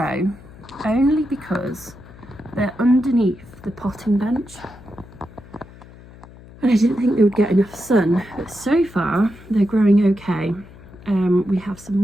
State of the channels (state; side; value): noise; left; hum, 20 dB below the sound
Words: only because they're underneath the potting bench. And I didn't think they would get enough sun, but so far they're growing okay. We have some